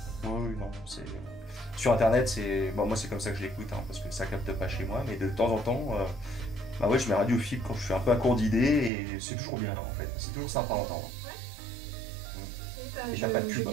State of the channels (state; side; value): drops out; left; at 8.9 s